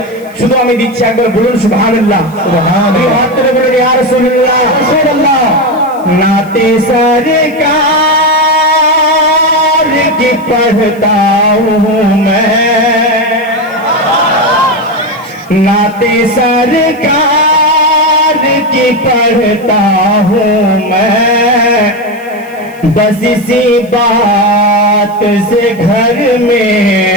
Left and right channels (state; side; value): noise; left; hiss, 27 dB below the sound